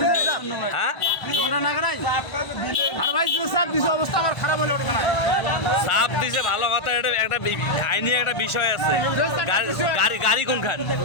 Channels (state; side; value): late; right; 1.5 ms